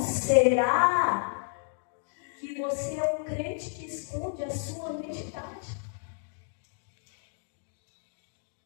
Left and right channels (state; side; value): silent; right; digital silence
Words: que você é um crente que esconde a sua identidade?